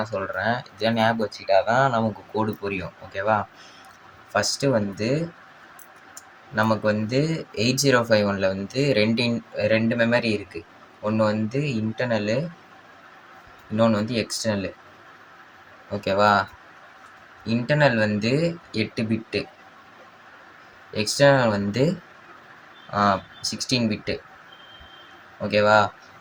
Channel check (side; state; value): both; identical; correlation 1.00